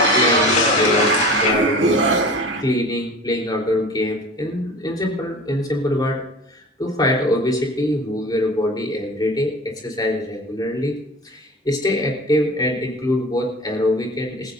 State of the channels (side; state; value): both; normal; correlation 0.38